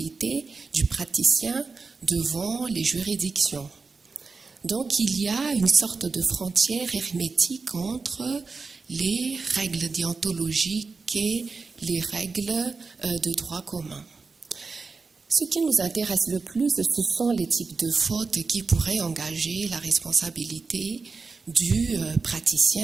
du praticien devant les juridictions. Donc il y a une sorte de frontière hermétique entre les règles déontologiques et les règles de droit commun. Ce qui nous intéresse le plus, ce sont les types de fautes qui pourraient engager la responsabilité du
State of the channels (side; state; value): left; quieter; 4.4 dB